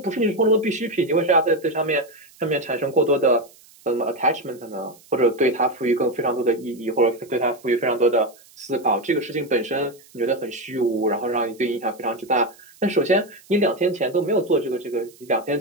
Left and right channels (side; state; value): right; noise; hiss, 26 dB below the sound